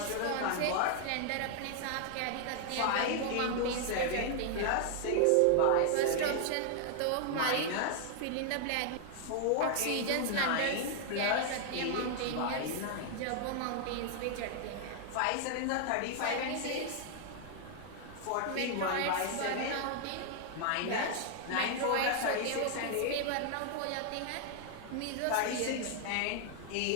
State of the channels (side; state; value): both; different; correlation 0.00